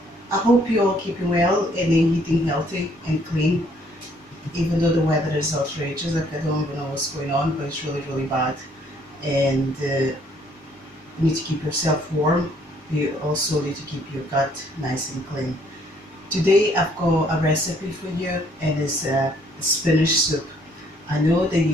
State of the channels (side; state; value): both; normal; correlation 0.64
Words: I hope you're all keeping well and eating healthy and clean, even though the weather is outrageous. Like I don't even know what's going on, but it's really bad. And you need to keep yourself warm. You also need to keep your gut nice and clean. Today I've got a recipe for you, and it's a spinach soup. I know that